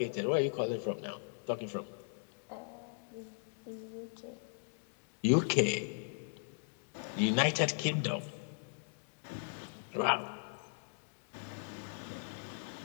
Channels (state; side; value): silent; right; digital silence